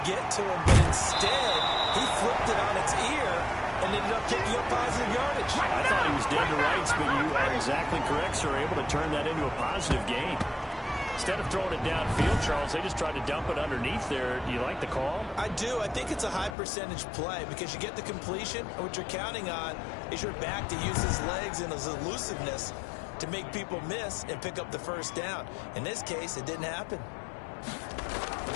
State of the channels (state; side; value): drops out; right; at 16.6 s